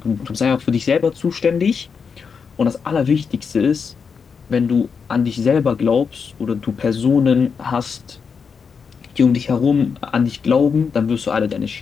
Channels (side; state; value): right; quieter; 5.9 dB